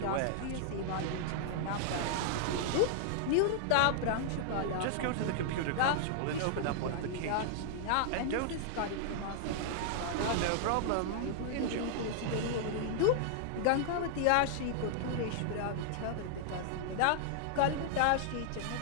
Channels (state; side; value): different; both; correlation -0.01